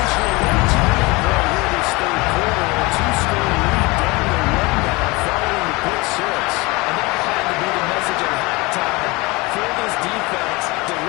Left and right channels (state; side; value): quieter; right; 24.2 dB